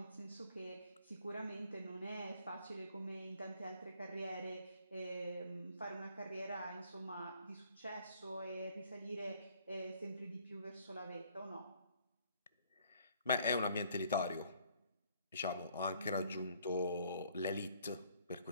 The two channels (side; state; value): both; inverted; correlation -0.62